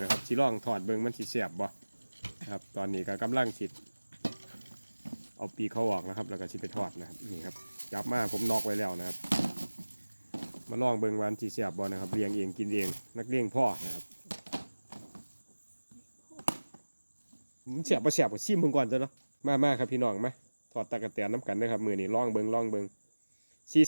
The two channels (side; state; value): both; inverted; correlation -1.00